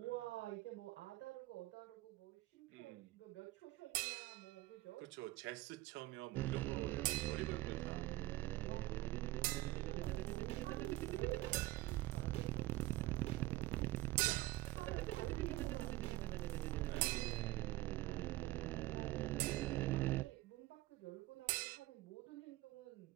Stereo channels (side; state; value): left; quieter; 18.2 dB